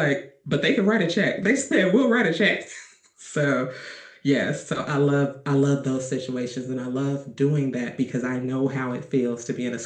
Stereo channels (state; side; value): identical; both; correlation 1.00